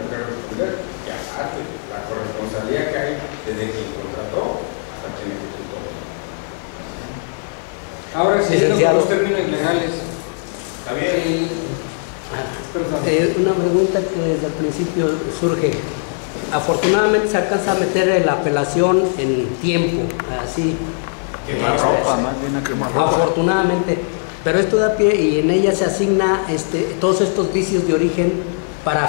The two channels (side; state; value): right; silent; 66 dB below the other